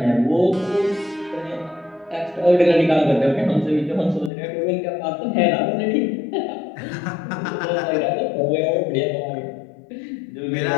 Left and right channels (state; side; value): drops out; right; at 4.3 s